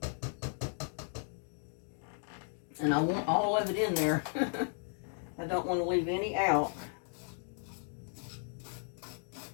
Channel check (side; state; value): right; silent; 54 dB below the other